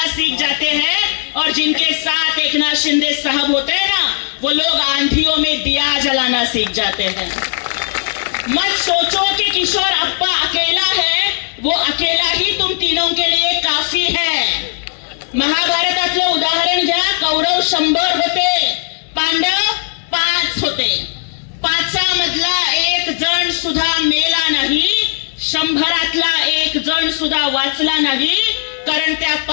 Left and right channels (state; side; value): silent; right; digital silence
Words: सीख जाते हैं. और जिनके साथ एकनाथ शिंदे साहब होते हैं ना वो लोग आंधियों में दिया जलाना सीख जाते हैं. मत सोचो कि किशोरप्पा अकेला है, वो अकेला ही तुम तीनों के लिए काफी है. महाभारतातले उदाहरण घ्या. कौरव 100 होते, पांडव 5 होते. 5 मधला 1 जण सुद्धा मेला नाही, 100तला 1 जण सुद्धा वाचला नाही. कारण त्या